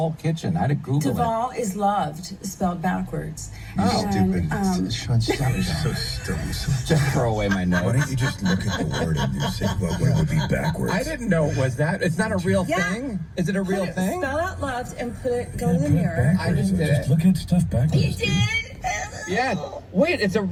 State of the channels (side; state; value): both; identical; correlation 1.00